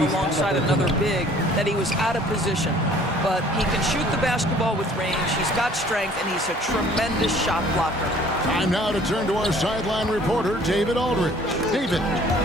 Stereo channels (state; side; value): normal; both; correlation 0.54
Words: alongside another big, that he was out of position. But he can shoot the basketball with range, he's got strength, and he's a tremendous shot blocker. Time now to turn to our sideline reporter, David Aldridge. David.